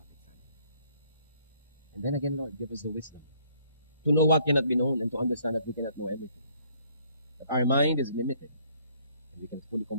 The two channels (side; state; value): both; inverted; correlation -0.63